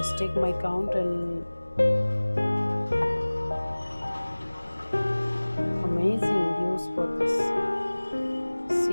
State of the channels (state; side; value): inverted; both; correlation -1.00